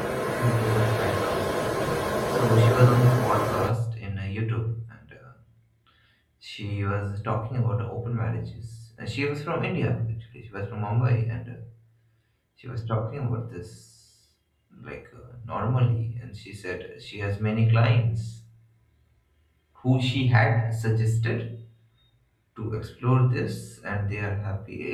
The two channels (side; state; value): both; identical; correlation 1.00